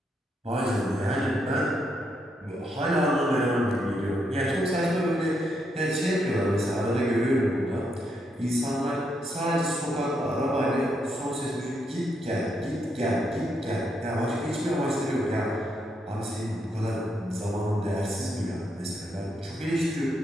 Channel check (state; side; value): normal; both; correlation 0.78